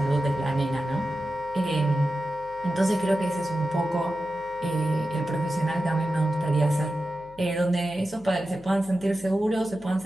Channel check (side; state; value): left; noise; hum, 24 dB below the sound